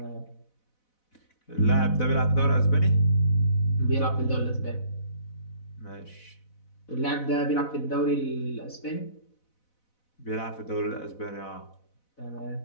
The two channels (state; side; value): late; right; 4.0 ms